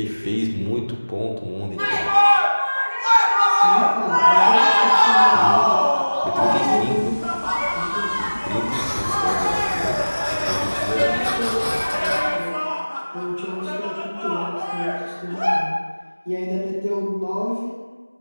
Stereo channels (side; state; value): both; inverted; correlation -1.00